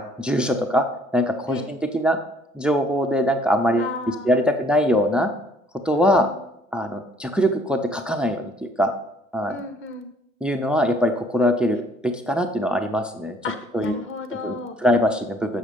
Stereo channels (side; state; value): both; normal; correlation 0.61